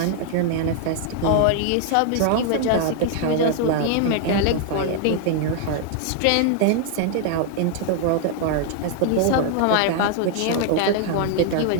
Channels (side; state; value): both; different; correlation 0.00